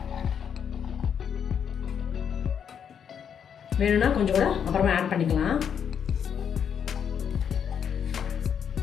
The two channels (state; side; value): quieter; right; 7.9 dB